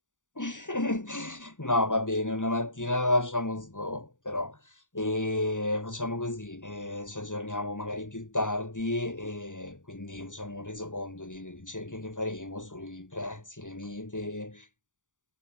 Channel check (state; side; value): late; right; 0.86 ms